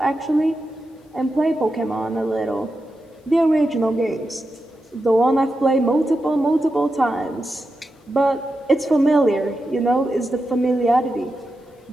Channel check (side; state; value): both; normal; correlation 0.89